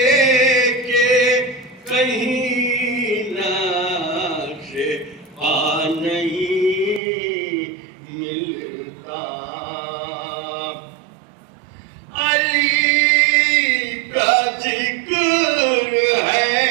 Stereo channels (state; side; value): drops out; left; at 7.0 s